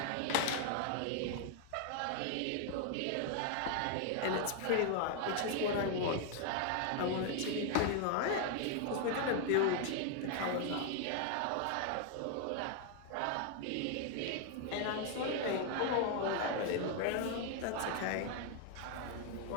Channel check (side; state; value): both; different; correlation 0.00